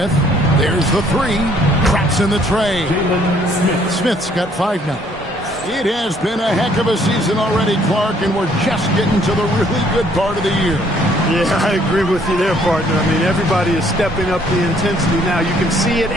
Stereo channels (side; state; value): both; normal; correlation 0.63